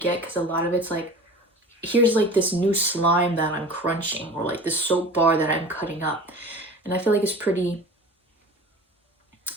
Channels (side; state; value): both; normal; correlation 0.38